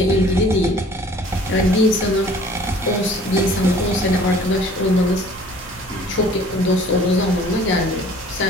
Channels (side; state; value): both; normal; correlation 0.52